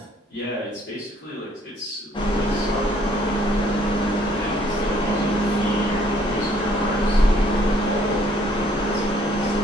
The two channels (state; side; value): normal; both; correlation 0.62